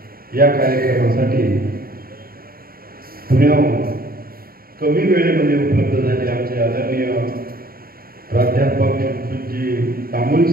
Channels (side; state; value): left; late; 0.43 ms